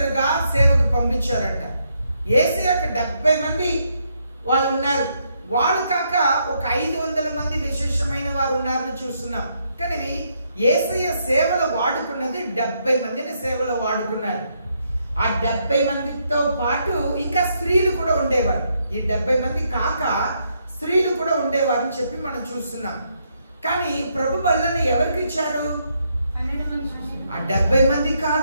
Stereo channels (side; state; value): both; inverted; correlation -0.76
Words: సేవకు పంపించారంట. యేసయ్యకు 70 మంది వాళ్ళు ఉన్నారు. వాళ్ళు కాక ఒక 500 మంది విశేషమైన వారు ఉన్నారని చూస్తున్నాం. కానీ యేసయ్య సేవలో వాడుకున్నది 70 మందిని సేవలో వాడుకున్నారు. ఆ 70 మందితో పాటు ఇంకా స్త్రీలు కూడా ఉండేవారు. ఈ 70 మంది కాక స్త్రీలు కూడా ఉండేవారు అని చెప్పి మనం చూస్తున్నాం. కానీ ప్రభు బల్లని ఎవరికి ఇచ్చారు? ఆ 70 మంది